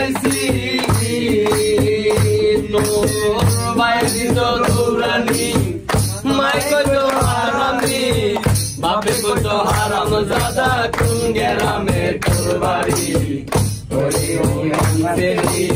তোর বায়ে দিত দৌড়ানি, মাই কইতো হারামি, বাপে কইতো হারাম জাদা, কোন গেরামে তোর বাড়ি। ওরে বেঈমান ছেড়ি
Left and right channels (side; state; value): both; identical; correlation 1.00